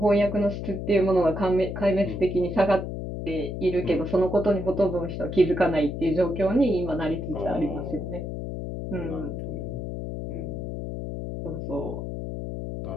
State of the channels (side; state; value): left; noise; hum, 5 dB below the sound